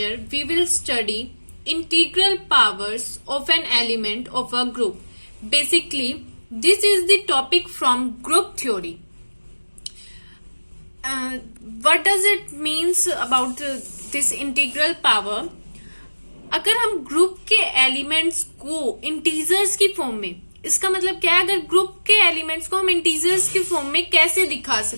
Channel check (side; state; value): both; inverted; correlation -1.00